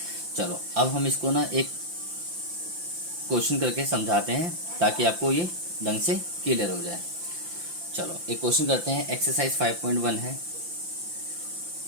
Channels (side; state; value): left; late; 5.8 ms